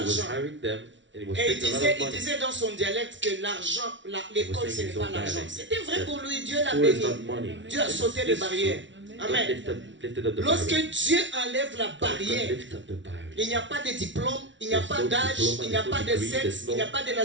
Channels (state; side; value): late; left; 0.55 ms